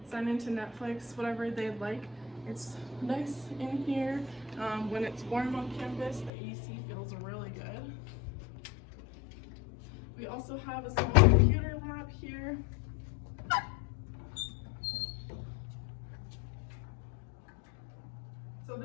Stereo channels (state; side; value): drops out; right; at 6.3 s